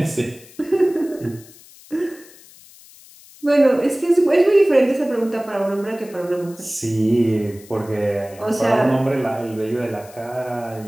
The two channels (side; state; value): left; noise; hiss, 23 dB below the sound